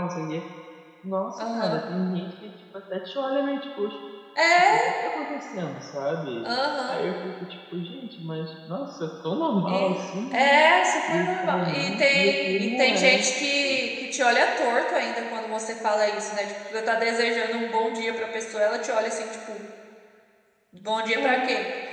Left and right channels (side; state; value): both; identical; correlation 1.00